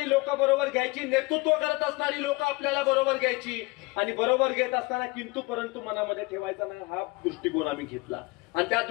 लोक बरोबर घ्यायची, नेतृत्व करत असणारी लोक आपल्याला बरोबर घ्यायची आणि बरोबर घेत असताना किंतु परंतु मनामध्ये ठेवायचा नाही हा दृष्टिकोन आम्ही घेतला आणि त्या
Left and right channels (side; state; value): right; quieter; 24.7 dB